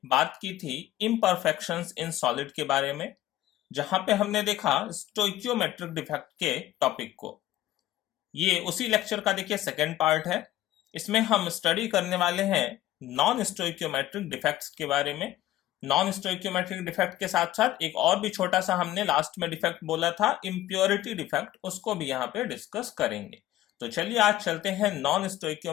बात की थी इम्परफेक्शंस इन सॉलिड के बारे में, जहां पे हमने देखा स्टोइकियोमेट्रिक डिफेक्ट के टॉपिक को। ये उसी लेक्चर का देखिए सेकेंड पार्ट है। इसमें हम स्टडी करने वाले हैं नॉन स्टोइकियोमेट्रिक डिफेक्ट्स के बारे में। नॉन स्टोइकियोमेट्रिक डिफेक्ट के साथ साथ एक और भी छोटा सा हमने लास्ट में डिफेक्ट बोला था, इम्प्योरिटी डिफेक्ट, उसको भी यहाँ पे डिस्कस करेंगे। तो चलिए आज चलते हैं नॉन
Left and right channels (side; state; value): right; quieter; 14.3 dB